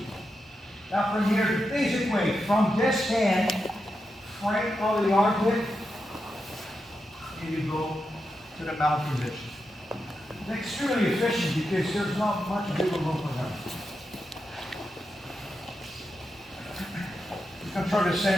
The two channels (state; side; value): normal; both; correlation 0.87